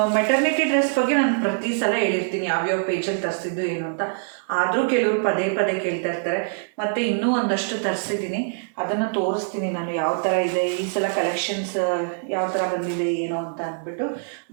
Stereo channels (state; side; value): silent; left; digital silence